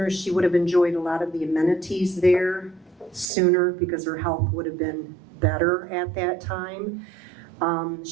is she would have enjoyed a lot of the amenities there sooner, because her health would have been better at that time.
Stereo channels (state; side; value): drops out; left; at 3.3 s